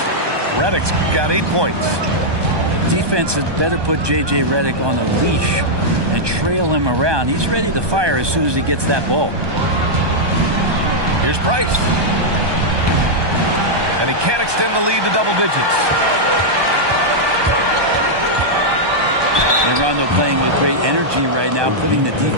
Redick's got 8 points. Defense had better put J.J. Redick on a leash and trail him around. He's ready to fire as soon as he gets that ball. Here's Price. And he can't extend the lead to double digits. And Rondo playing with great energy right now, putting the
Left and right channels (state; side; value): late; left; 1.2 ms